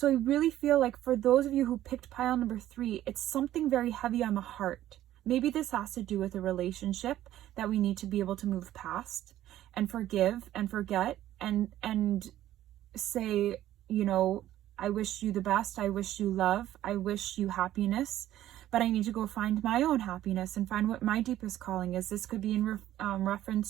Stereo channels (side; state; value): left; quieter; 13.2 dB